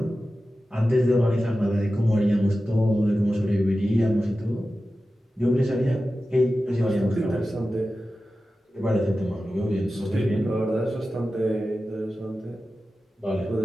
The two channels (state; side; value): normal; both; correlation 0.94